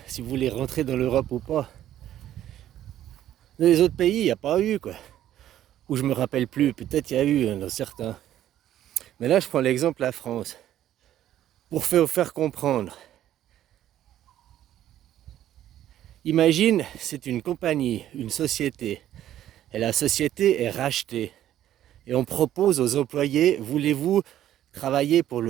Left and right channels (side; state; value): left; quieter; 12.1 dB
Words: si vous voulez rentrer dans l'Europe ou pas. Dans les autres pays, il n'y a pas eu quoi. Ou je me rappelle plus, peut-être il y a eu dans certains. Mais là je prends l'exemple de la France. Pour faire comprendre. Imagine, c'est une compagnie, une société. Et la société est rachetée. Et on propose aux employés, voulez-vous travailler pour